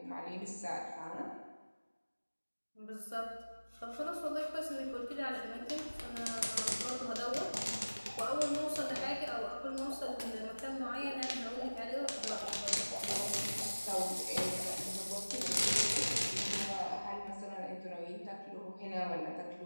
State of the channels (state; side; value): inverted; both; correlation -1.00